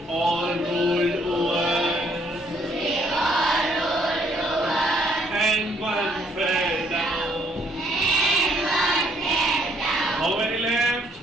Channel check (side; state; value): both; normal; correlation 0.67